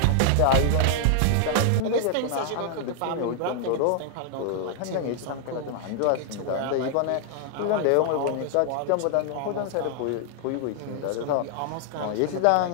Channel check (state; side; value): different; both; correlation 0.00